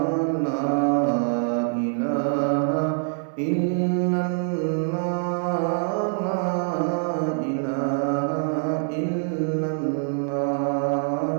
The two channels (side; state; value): left; silent; digital silence